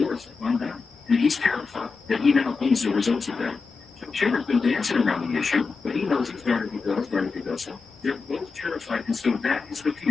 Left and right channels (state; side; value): quieter; right; 4.6 dB